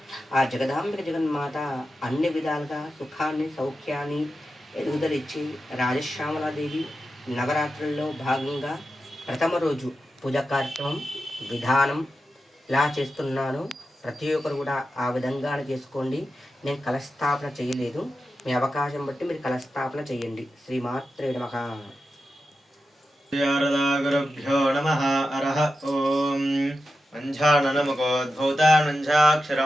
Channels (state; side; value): normal; both; correlation 0.91